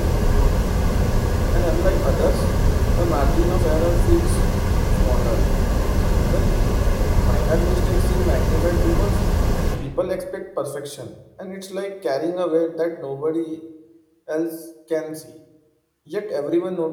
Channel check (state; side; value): identical; both; correlation 1.00